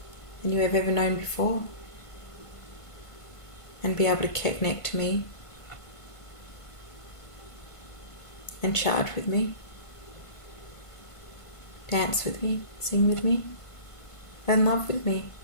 than you have ever known before. And be able to connect to me and charge with me, dance with me, sing with me, and love with me.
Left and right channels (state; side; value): late; right; 1.5 ms